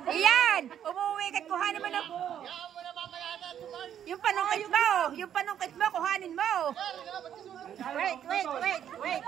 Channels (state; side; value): quieter; left; 9.7 dB